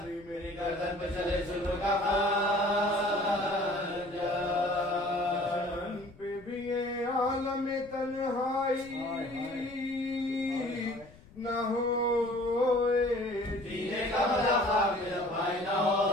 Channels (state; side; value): noise; left; rumble, 23 dB below the sound